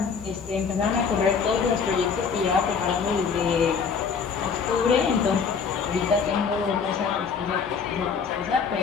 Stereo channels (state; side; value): quieter; right; 5.9 dB